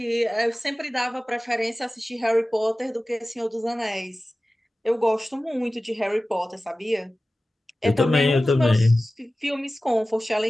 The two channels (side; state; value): both; normal; correlation 0.96